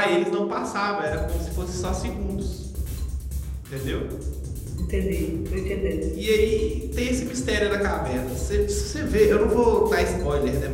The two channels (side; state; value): both; identical; correlation 1.00